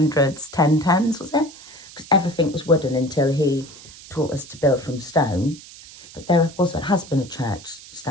was it? Because everything was wooden until he taught us to build from stone. But there has been a church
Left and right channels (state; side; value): noise; right; hiss, 19 dB below the sound